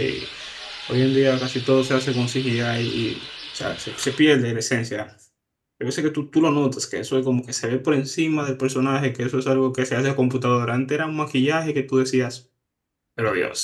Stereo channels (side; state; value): both; identical; correlation 1.00